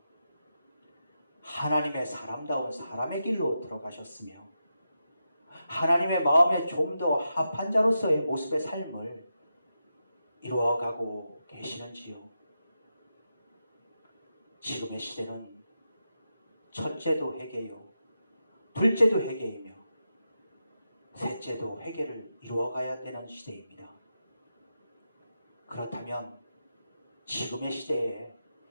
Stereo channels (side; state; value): both; inverted; correlation -0.88